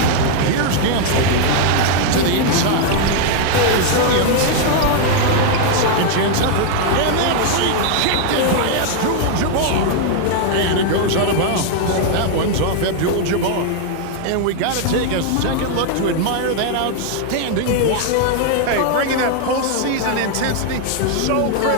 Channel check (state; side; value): different; both; correlation 0.00